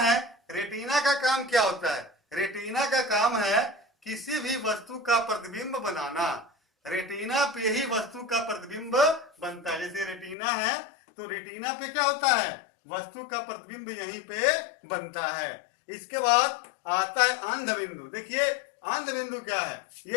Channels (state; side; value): drops out; right; at 10.4 s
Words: रेटिना का काम क्या होता है, रेटिना का काम है किसी भी वस्तु का प्रतिबिंब बनाना। रेटिना पे ही वस्तु का प्रतिबिंब बनता है। जैसे रेटिना है तो रेटिना पे क्या होता है, वस्तु का प्रतिबिंब यहीं पे बनता है। इसके बाद आता है अंध बिंदु। देखिए अंध बिंदु क्या है,